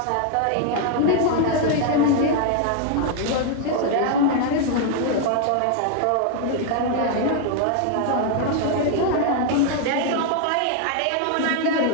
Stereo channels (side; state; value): both; different; correlation 0.00